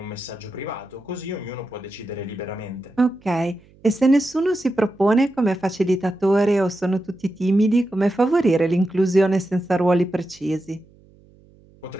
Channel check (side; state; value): right; noise; hum, 28 dB below the sound